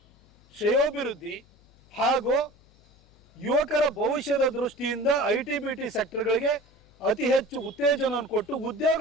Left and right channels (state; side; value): noise; left; hum, 30 dB below the sound